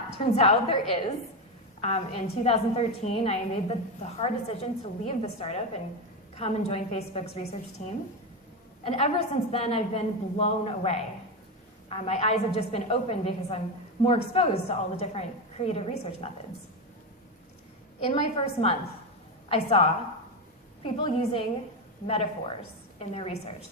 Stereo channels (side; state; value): both; normal; correlation 0.13